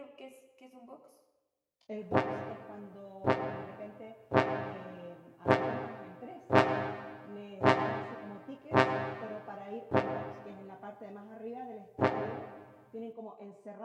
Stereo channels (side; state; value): both; identical; correlation 1.00